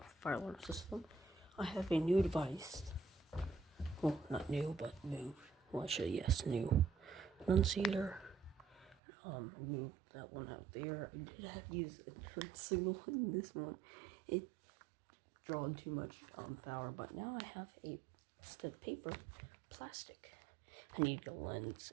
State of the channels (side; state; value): left; drops out; at 9.0 s